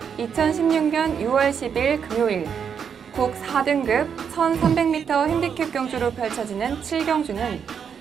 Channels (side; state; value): left; quieter; 7.3 dB